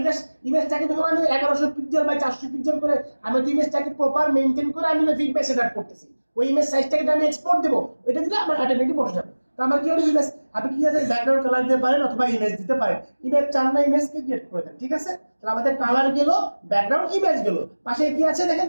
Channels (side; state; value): both; inverted; correlation -1.00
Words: জাস্ট ইমেজটাকে যখন আমি 1100 পিক্সেল বাই 400 পিক্সেল করে আমি ইমেজটাকে প্রপার মেইনটেইন করে আমি ফিডব্যাক সেটআপ করতেছি ওই ইমেজ সাইজটাকে আমি এক্সপোর্ট দেব এটা দিলে আমার অটোমেটিক বসে যাবে তো আমার কি হলো ইমেজ আপনি কি আছে ব্যাকগ্রাউন্ড কালার দিতে পারেন অথবা ইমেজ দিতে পারেন ইমেজ চান না ইমেজকে ক্রিয়েট করে দেন ঠিক আছে তাহলে আমাদের কালার গেল ব্যাকগ্রাউন্ড ইমেজ গেল পাশে কি আছে দেখেন